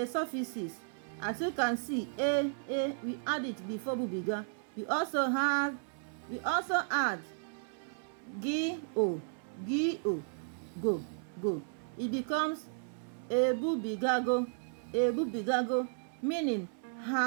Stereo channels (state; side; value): silent; left; 55 dB below the other